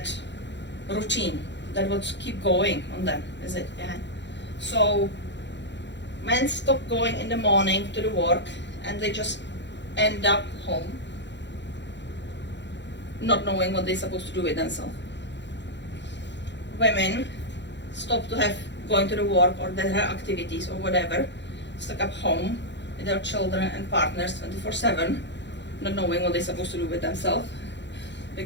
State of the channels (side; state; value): right; late; 0.52 ms